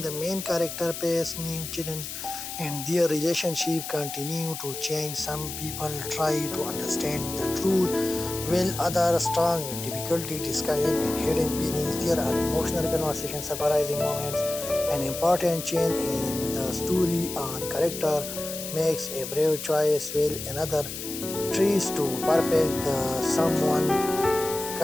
main character pace new children and their relationship continue to change. Some people try to understand the truth while others strong with difficulty discovering and hidden meanings. There are emotional conversations, surprising moments, an important change in the story on character makes a brave choice while another tries to perfect the someone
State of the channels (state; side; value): noise; left; hiss, 8 dB below the sound